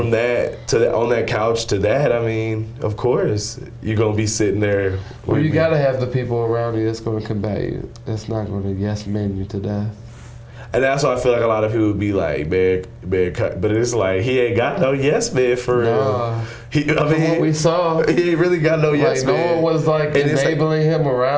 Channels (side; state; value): both; identical; correlation 1.00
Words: that to on that couch to that. I mean, of course, you're gonna be sitting there. Well, you gotta have the people around you that's gonna combat you. That's not gonna yes man you to death. And that's why I feel like a lot of people would be like, man, but it's like, he ain't got no yes man for real. What we saw, he ain't really got no yes man. No one was like enabling him